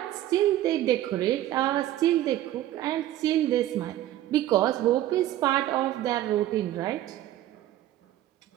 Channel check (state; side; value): quieter; left; 13.7 dB